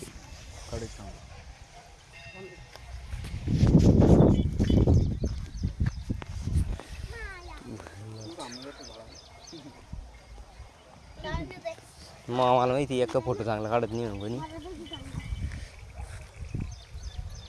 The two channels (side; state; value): both; identical; correlation 1.00